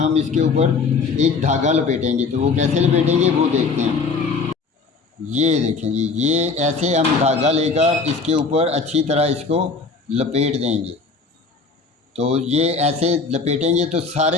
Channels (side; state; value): right; quieter; 4.4 dB